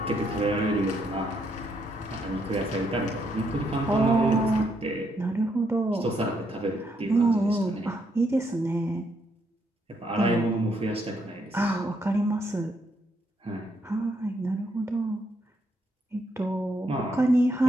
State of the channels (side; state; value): both; normal; correlation 0.75